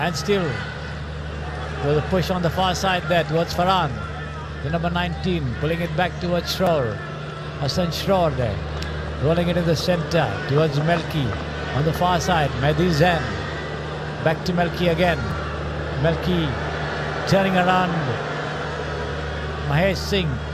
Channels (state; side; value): identical; both; correlation 1.00